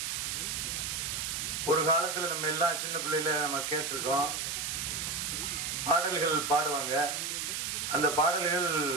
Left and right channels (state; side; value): noise; right; hiss, 2 dB below the sound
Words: ஒரு காலத்தில் நம்ம எல்லாம் சின்ன பிள்ளையில நம்ம கேட்டிருக்கோம், பாடல்கள் பாடுவாங்க. அந்த பாடல்கள்